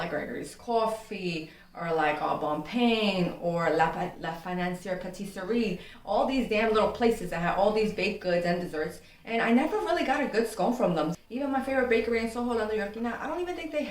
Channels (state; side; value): identical; both; correlation 1.00